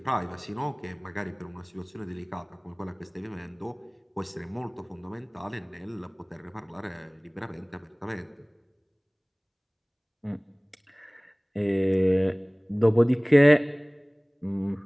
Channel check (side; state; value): both; identical; correlation 1.00